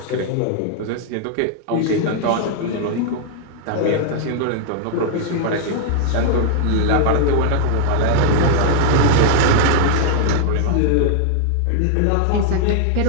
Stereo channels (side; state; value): both; different; correlation -0.01